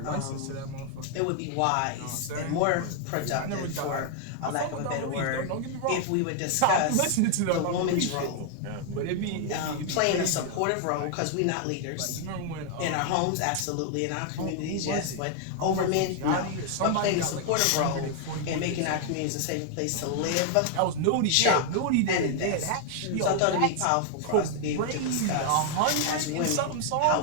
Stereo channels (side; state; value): both; different; correlation 0.00